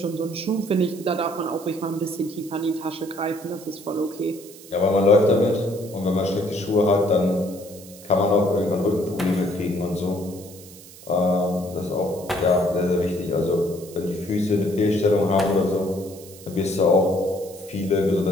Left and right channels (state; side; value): noise; right; hiss, 19 dB below the sound